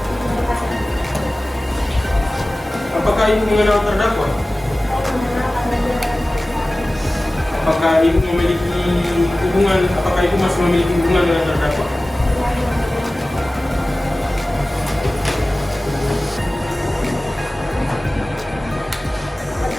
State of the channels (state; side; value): normal; both; correlation 0.97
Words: Apakah Ibu mengenal terdakwa? Apakah Ibu memiliki hubungan? Apakah Ibu masih memiliki hubungan dengan terdakwa?